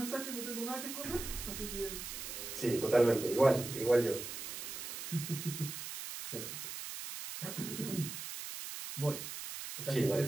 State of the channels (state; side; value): noise; right; hiss, 7 dB below the sound